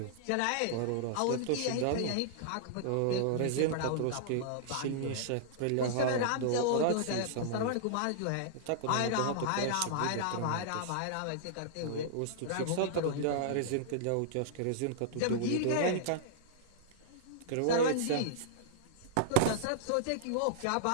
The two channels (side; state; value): both; different; correlation -0.02